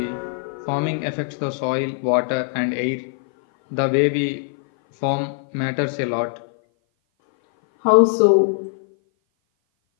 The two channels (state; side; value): silent; right; 57 dB below the other